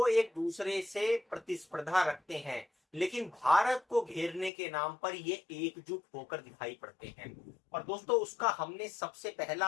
एक दूसरे से प्रतिस्पर्धा रखते हैं, लेकिन भारत को घेरने के नाम पर ये एकजुट होकर दिखाई पड़ते हैं। और दोस्तों उसका हमने सबसे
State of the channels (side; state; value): right; drops out; at 4.5 s